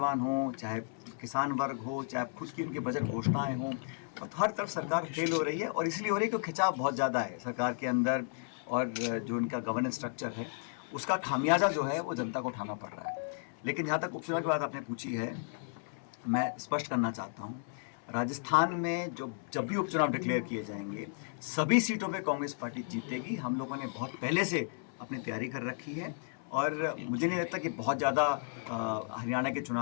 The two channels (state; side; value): silent; right; 55 dB below the other